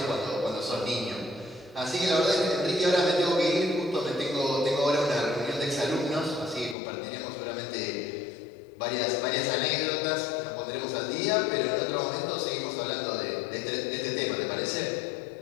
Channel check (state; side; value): drops out; right; at 6.8 s